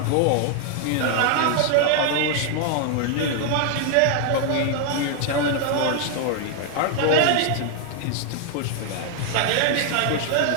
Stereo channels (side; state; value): both; different; correlation 0.00